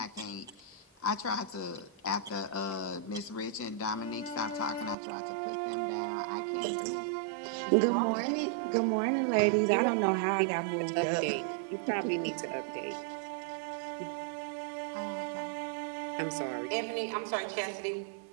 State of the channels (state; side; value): drops out; left; at 5.0 s